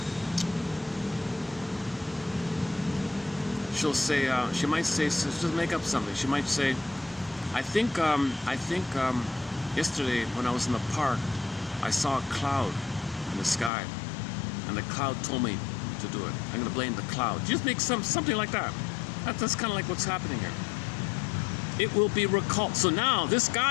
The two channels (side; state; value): right; drops out; at 13.7 s